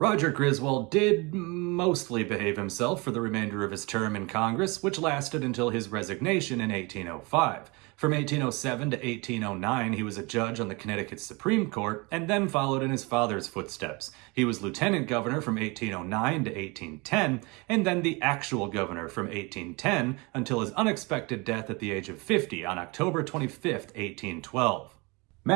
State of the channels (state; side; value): quieter; left; 27.1 dB